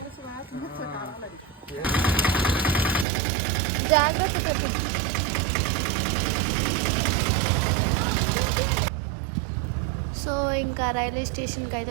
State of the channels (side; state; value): left; drops out; at 3.1 s